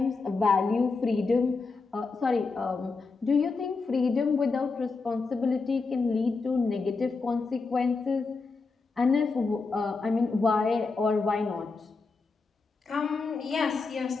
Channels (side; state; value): right; quieter; 4.2 dB